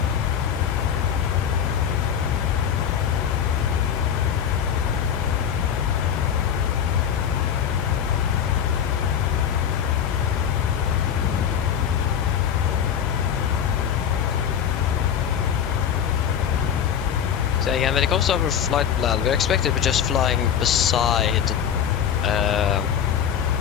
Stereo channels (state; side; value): quieter; right; 8.4 dB